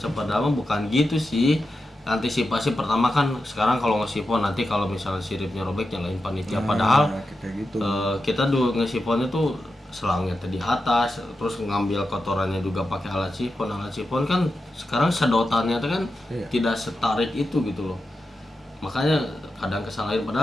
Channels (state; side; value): normal; both; correlation 0.90